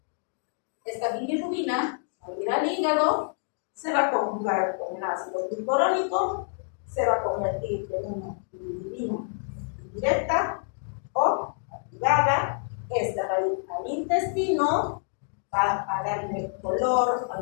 Esta bilirrubina, al ir al hígado, se va a conjugar con el ácido glucurónico, se va a convertir en una bilirrubina indirecta o activada esta va a ir al intestino, va a darle color a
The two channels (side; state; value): right; silent; 60 dB below the other